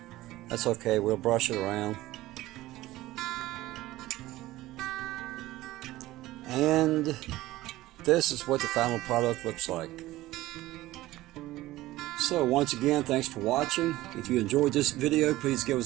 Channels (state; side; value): quieter; left; 17.0 dB